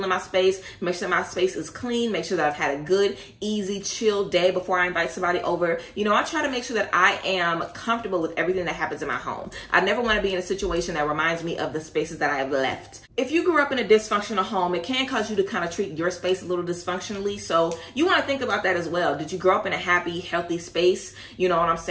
in my space, make sure my space is clean, make sure that I've had a good, easy, chill day before I invite somebody over. You know, I try to make sure that I am comfortable with everything that happens in my home. I never want to be in a situation that reminds me of the spaces that I have left. If you grew up in a dysfunctional home, it can cause you to kind of treat your space a little dysfunctionally. So you want to think about that as well. Did you grow up in a happy, healthy space? You know what I'm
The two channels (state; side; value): identical; both; correlation 1.00